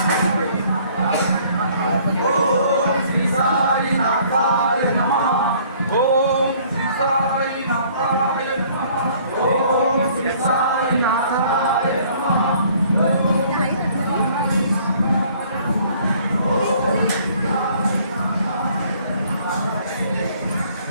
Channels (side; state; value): both; inverted; correlation -0.58